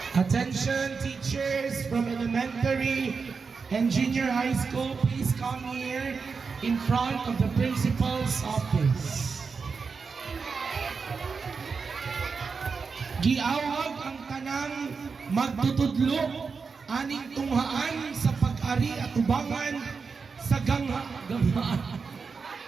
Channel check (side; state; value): left; quieter; 5.1 dB